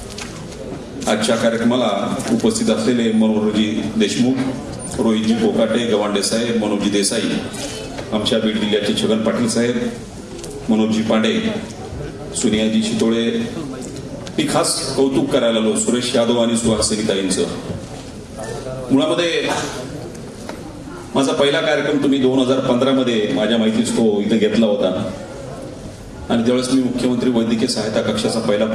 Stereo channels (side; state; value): both; identical; correlation 1.00